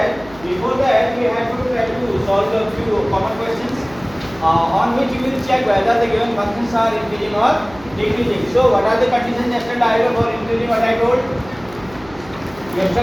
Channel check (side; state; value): right; noise; hum, 21 dB below the sound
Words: we have to try to solve a few common questions on which we will check whether the given functions are increasing or decreasing. So, what are the conditions yesterday for increasing? What I told?